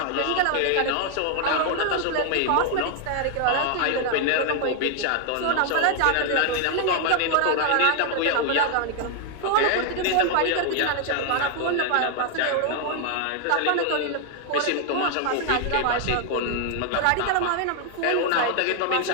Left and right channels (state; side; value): different; both; correlation 0.00